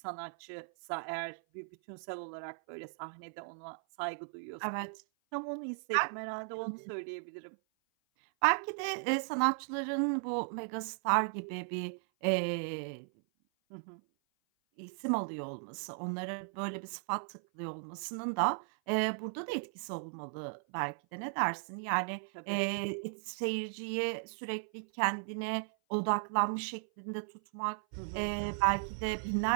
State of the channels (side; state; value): left; silent; 54 dB below the other